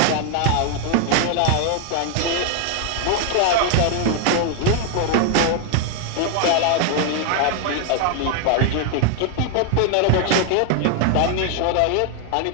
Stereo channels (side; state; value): both; different; correlation 0.00